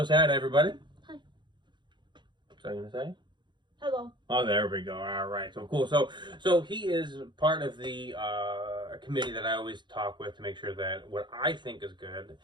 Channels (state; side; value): late; left; 0.22 ms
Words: sad, everybody. Hi. What's I gonna say? Hello. Oh, there we go. All right, so cool. So he is part of the committee that I always talk with to make sure that what I think is good,